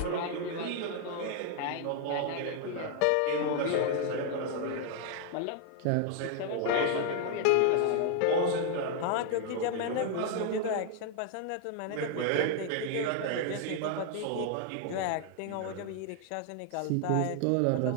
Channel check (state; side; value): different; both; correlation 0.00